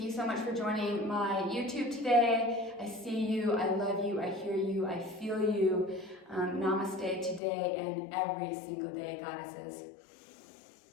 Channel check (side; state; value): right; drops out; at 7.4 s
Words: you so much for joining my YouTube today. I see you, I love you, I hear you, I feel you. Namaste today and every single day, goddesses.